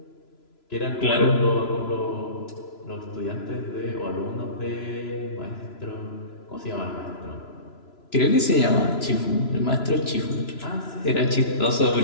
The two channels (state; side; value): late; right; 3.0 ms